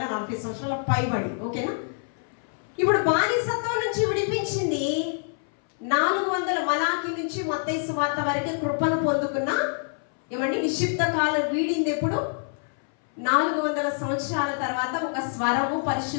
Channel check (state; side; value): silent; right; 61 dB below the other